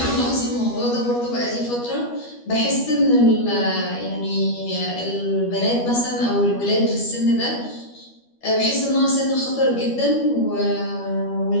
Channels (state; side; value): late; right; 12 ms